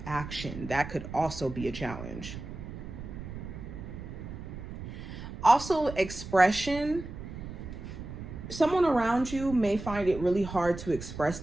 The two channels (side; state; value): right; noise; rumble, 10 dB below the sound